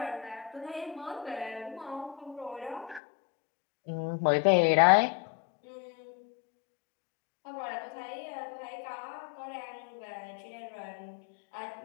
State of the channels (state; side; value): drops out; right; at 3.0 s